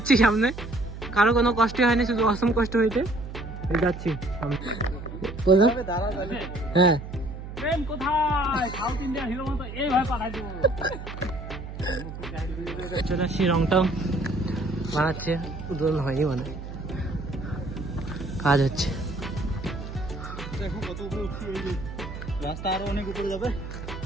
সামনে। কারো কোনো কষ্ট হয়নি, শুধু অসম কষ্ট হয়েছে। যাচ্ছি হ্যাঁ। চলে আসছি, রংটাও বানাচ্ছে, উদ্বোধন হয়নি মানে, কাজ হচ্ছে। দেখো কত উপরে উঠছি, ওই যে রাস্তা আরো অনেক উপরে যাবে,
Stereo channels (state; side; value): noise; right; hum, 10 dB below the sound